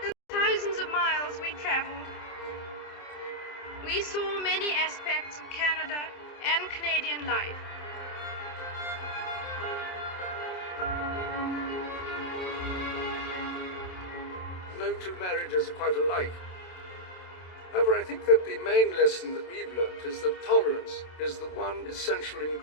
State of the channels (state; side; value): late; right; 27 ms